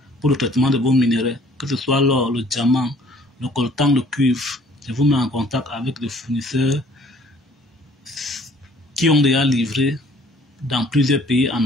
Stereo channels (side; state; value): both; normal; correlation 0.56